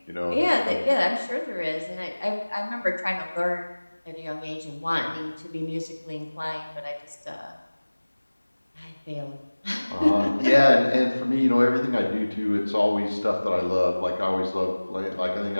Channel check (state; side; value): inverted; both; correlation -1.00